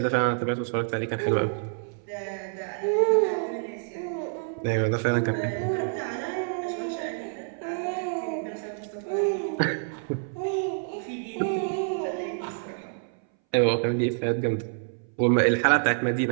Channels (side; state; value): left; silent; 60 dB below the other